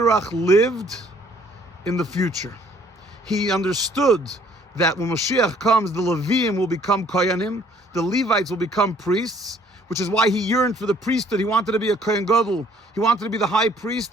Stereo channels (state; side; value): normal; both; correlation 0.60